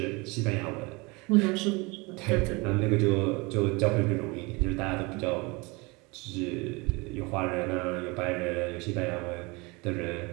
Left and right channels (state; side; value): quieter; left; 26.2 dB